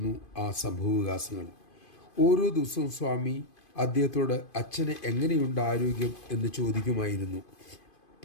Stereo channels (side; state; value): right; late; 2.5 ms